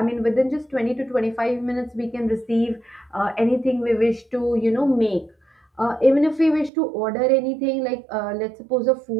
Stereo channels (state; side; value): drops out; left; at 6.7 s